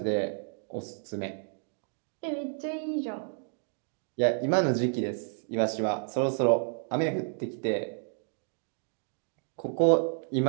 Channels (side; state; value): left; silent; 57 dB below the other